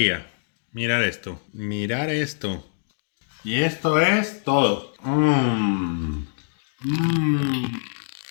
Mirar esto. Mirar esto. Y esto es todo.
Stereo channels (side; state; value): right; silent; digital silence